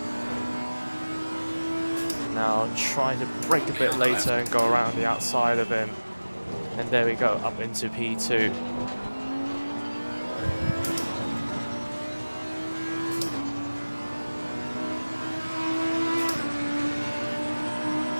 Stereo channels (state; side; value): inverted; both; correlation -1.00